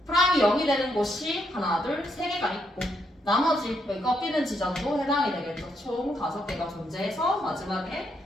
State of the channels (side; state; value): both; normal; correlation 0.77